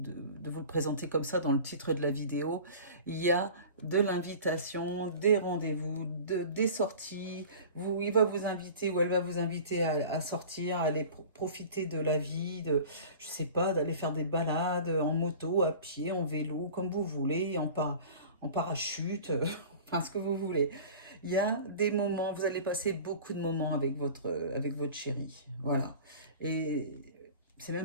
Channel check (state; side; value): inverted; both; correlation -0.40